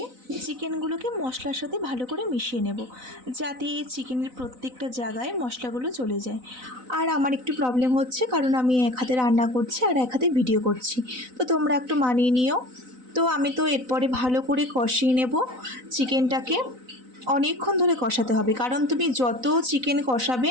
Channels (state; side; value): late; left; 4.0 ms